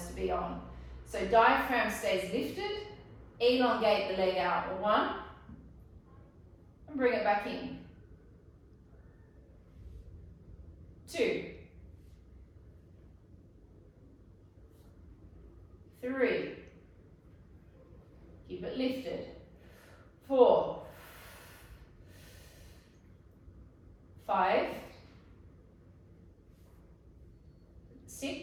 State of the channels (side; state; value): both; identical; correlation 1.00